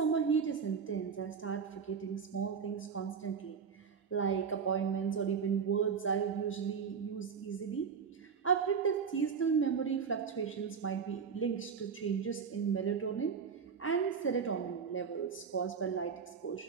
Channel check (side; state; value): left; quieter; 6.3 dB